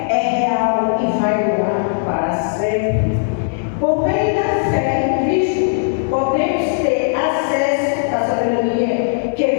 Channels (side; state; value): right; silent; digital silence